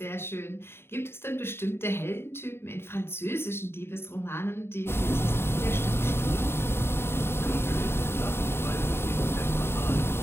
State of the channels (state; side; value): late; right; 0.11 ms